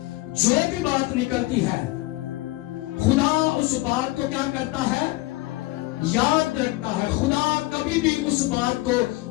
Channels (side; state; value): right; quieter; 20.1 dB